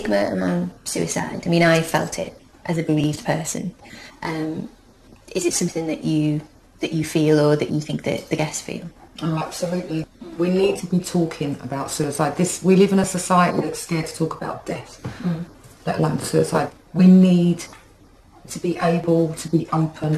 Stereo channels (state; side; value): identical; both; correlation 1.00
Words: around suicide, I mean, I felt it as a bereaved person. Is it something that you feel, or that you think that the guests feel? Oh, absolutely. We need to be talking about suicide. We live in a society that's scared to talk about death, let alone suicide. We need to be able to be open